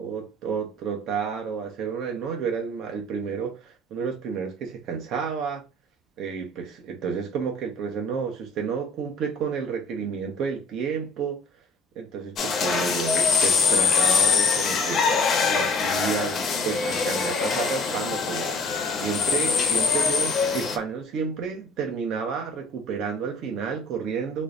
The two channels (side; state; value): both; normal; correlation 0.51